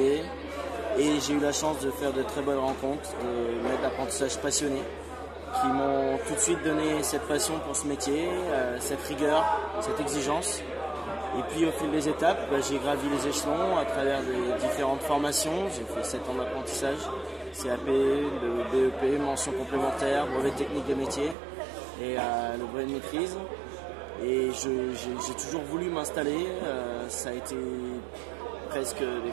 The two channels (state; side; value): drops out; left; at 21.4 s